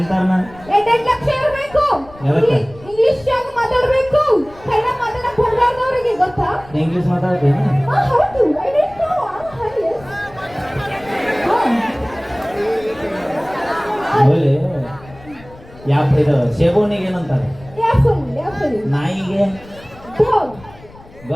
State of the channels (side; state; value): left; noise; rumble, 22 dB below the sound